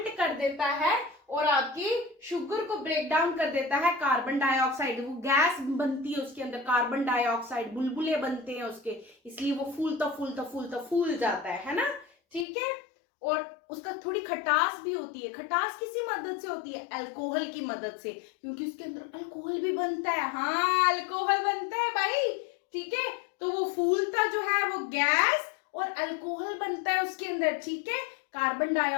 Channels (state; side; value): drops out; right; at 12.5 s